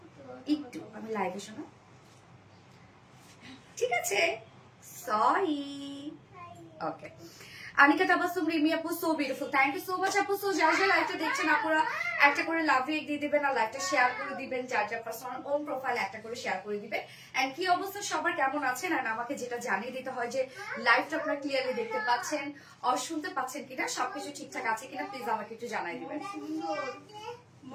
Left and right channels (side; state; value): both; identical; correlation 1.00